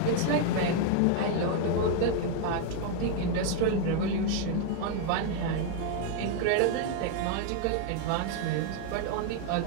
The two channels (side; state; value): both; different; correlation 0.00